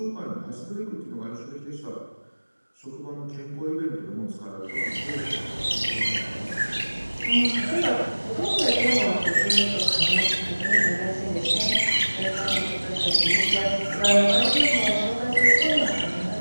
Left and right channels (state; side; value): inverted; both; correlation -1.00